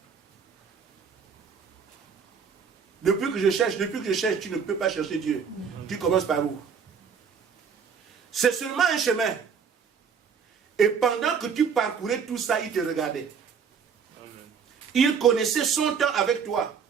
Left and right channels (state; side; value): quieter; left; 6.5 dB